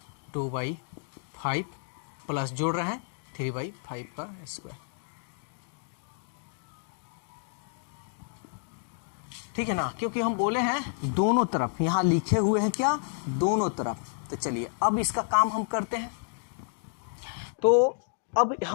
2/5 प्लस जोड़ रहे हैं 3/5 का स्क्वायर। ठीक है ना, क्योंकि हम बोले हैं दोनों तरफ, यहाँ लिखे हुए हैं क्या, दोनों तरफ। तो चलिए अब इसका काम हम करते हैं। तो अब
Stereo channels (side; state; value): right; silent; digital silence